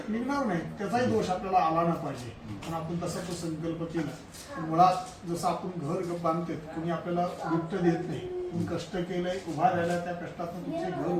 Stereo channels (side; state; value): both; identical; correlation 1.00